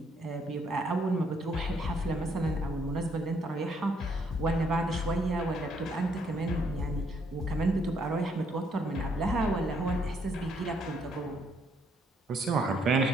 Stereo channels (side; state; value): both; normal; correlation 0.70